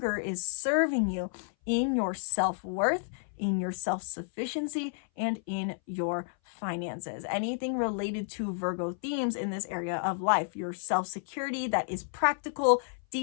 is serving you in your self-worth, in your self-sufficiency, and in your finances. Anything related to Virgo themes in this area of life, your self-security that is practical,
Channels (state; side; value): silent; right; 57 dB below the other